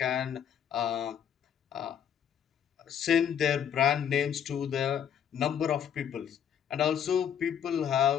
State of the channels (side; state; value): right; quieter; 8.7 dB